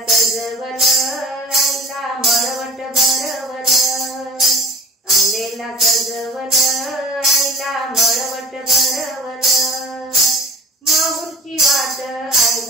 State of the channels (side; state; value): both; normal; correlation 0.45